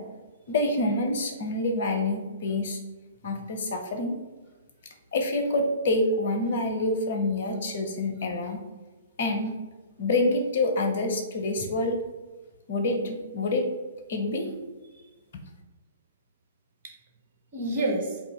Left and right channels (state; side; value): inverted; both; correlation -0.39